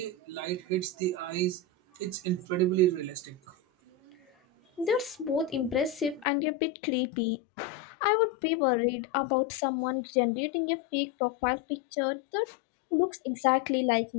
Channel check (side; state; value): right; drops out; at 6.2 s